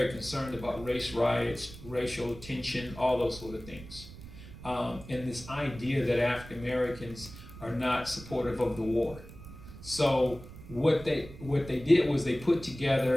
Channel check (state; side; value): noise; right; rumble, 15 dB below the sound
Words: concerned about race riots, racial tension, all those sort of things. And this idea that African Americans are not supportive of the war. So what they did was they put